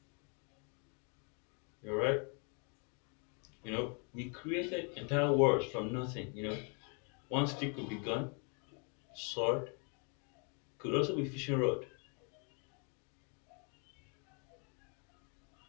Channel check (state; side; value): quieter; right; 37.6 dB